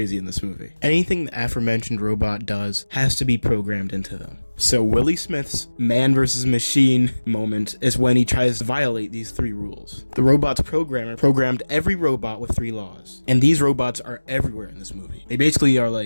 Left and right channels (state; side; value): inverted; both; correlation -1.00